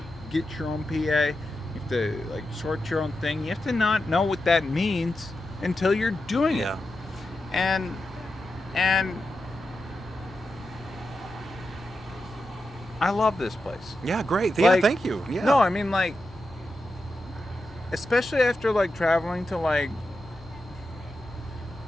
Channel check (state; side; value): normal; both; correlation 0.89